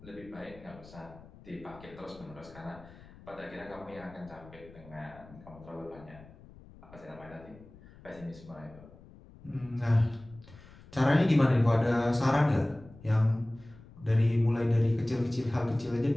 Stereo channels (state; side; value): noise; left; rumble, 21 dB below the sound